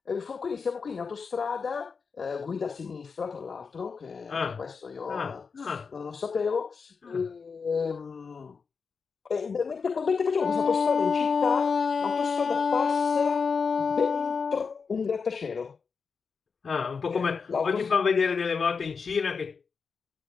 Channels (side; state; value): right; quieter; 5.3 dB